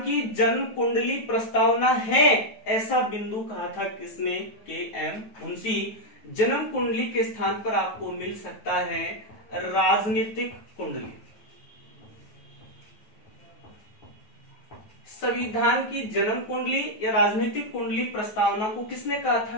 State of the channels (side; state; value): right; late; 9.1 ms